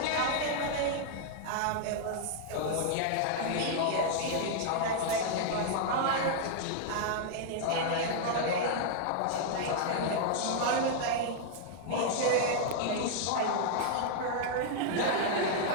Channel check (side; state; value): both; different; correlation -0.01